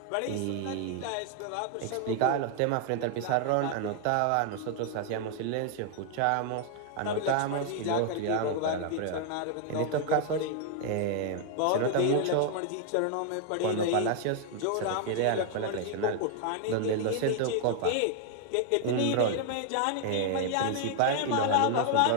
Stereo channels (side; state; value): both; different; correlation 0.00